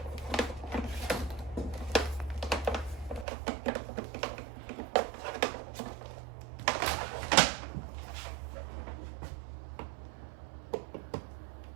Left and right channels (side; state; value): left; drops out; at 3.2 s